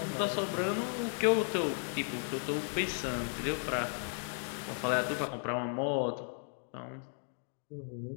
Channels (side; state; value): right; silent; 54 dB below the other